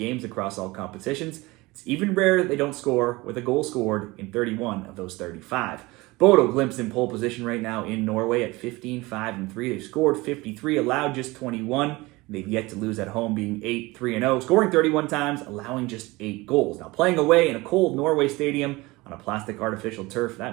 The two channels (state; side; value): quieter; left; 22.0 dB